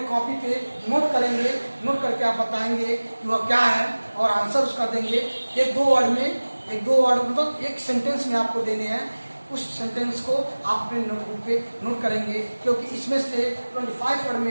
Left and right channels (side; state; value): both; inverted; correlation -1.00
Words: कॉपी पे नोट करेंगे, नोट करके आप बताएंगे कि वह क्या है और आंसर उसका देंगे। एक दो वर्ड मतलब एक सेंटेंस में आपको देने हैं। उस सेंटेंस को आप अपने नोटबुक पे नोट करेंगे, क्योंकि इसमें से 25 वर्ड